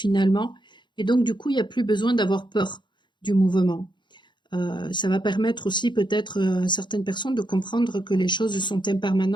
et donc du coup, il n'y a plus besoin d'avoir peur du mouvement. Ça va permettre aussi peut-être à certaines personnes de comprendre que les choses sont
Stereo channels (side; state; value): right; late; 0.22 ms